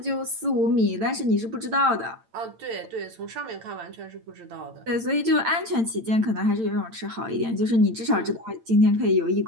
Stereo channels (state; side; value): late; left; 8.9 ms